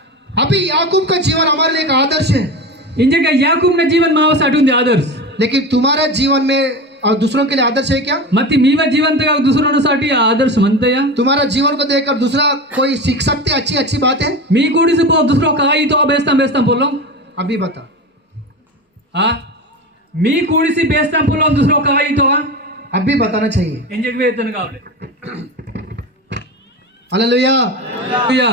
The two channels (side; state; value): both; normal; correlation 0.25